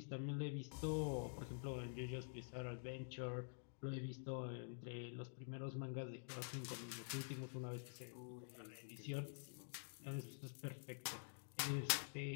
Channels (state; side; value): silent; right; digital silence